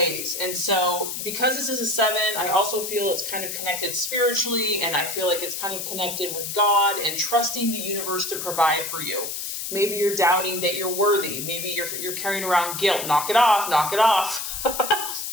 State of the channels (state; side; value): noise; left; hiss, 5 dB below the sound